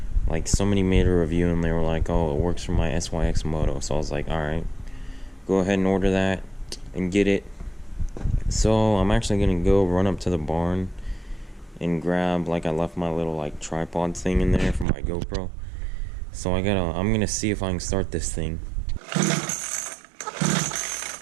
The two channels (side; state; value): left; drops out; at 14.9 s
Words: like somebody made a review and they were like, oh, it works for my Syx Moto. So I was like, alright, go ahead and order that and get it. So I'm actually gonna go run up to the barn and grab, like, I left my little like tripod thing in there for my GoPro. So I'm gonna see if I can start this thing.